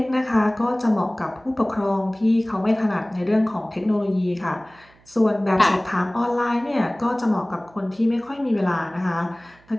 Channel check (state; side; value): noise; right; hum, 29 dB below the sound